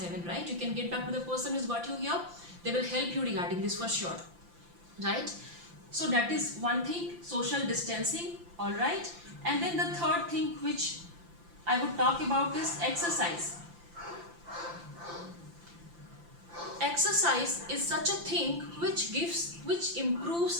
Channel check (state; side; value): late; left; 5.8 ms